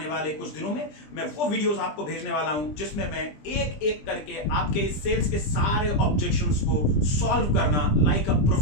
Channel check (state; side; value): late; right; 20 ms